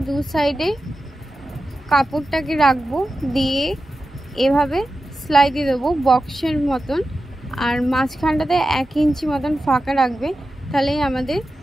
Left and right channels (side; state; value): both; normal; correlation 0.92